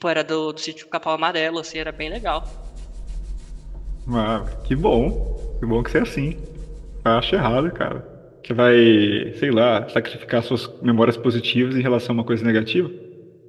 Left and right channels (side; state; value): both; identical; correlation 1.00